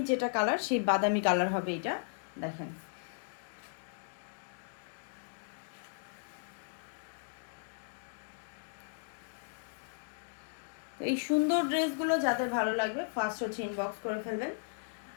যেটা কালার, সেই বাদামি কালার হবে এটা, দেখেন। এই সুন্দর ড্রেসগুলো যাদের ভালো লাগবে ফার্স্ট হচ্ছে ইনবক্স করে ফেলবেন।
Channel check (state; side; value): silent; right; digital silence